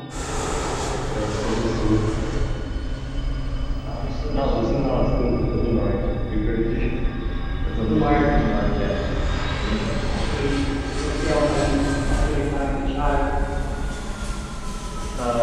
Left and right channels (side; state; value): both; identical; correlation 1.00